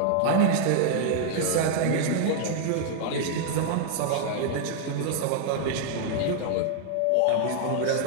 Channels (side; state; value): both; different; correlation 0.00